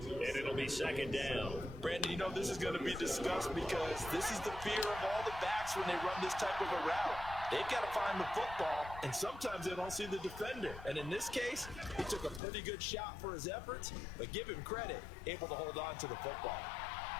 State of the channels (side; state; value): right; drops out; at 12.4 s